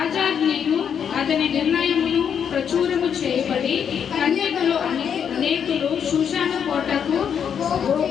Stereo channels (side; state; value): right; quieter; 7.9 dB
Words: అతని నిర్ణయమును ప్రచురము చేయబడి కన్యకలు అనేకులు షూషాను కోటకు